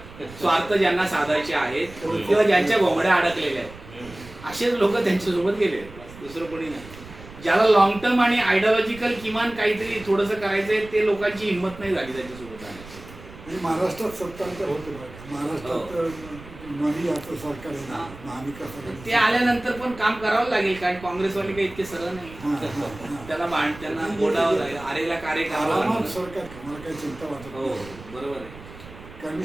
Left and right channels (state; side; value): noise; right; rumble, 17 dB below the sound